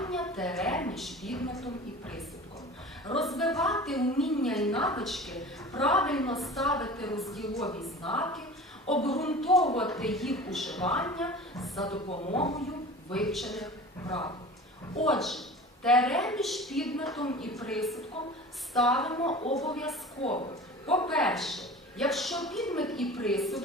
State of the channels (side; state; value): both; normal; correlation 0.38